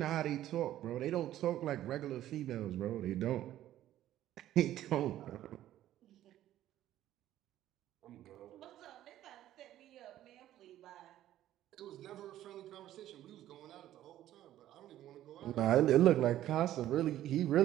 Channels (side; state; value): left; quieter; 13.0 dB